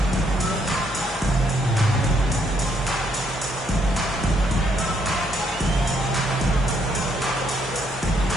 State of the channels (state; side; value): normal; both; correlation 0.72